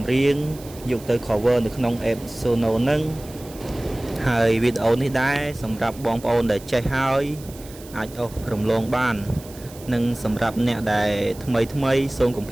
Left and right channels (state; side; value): noise; right; hiss, 19 dB below the sound